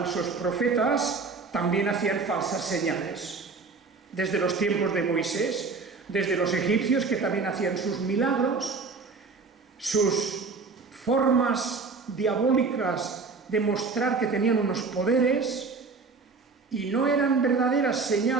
profetas también hacían falsas señales. Desde los tiempos de Moisés, desde los egipcios, que también hacían sus milagros, sus formas diabólicas de mostrar que tenían unos poderes, y no eran verdaderas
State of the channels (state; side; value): quieter; left; 4.4 dB